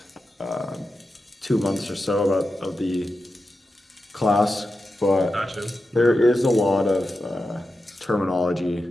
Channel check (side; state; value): both; normal; correlation 0.90